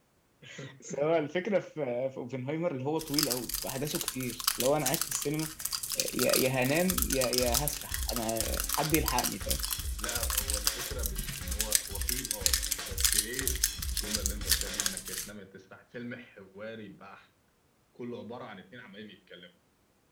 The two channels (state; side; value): identical; both; correlation 1.00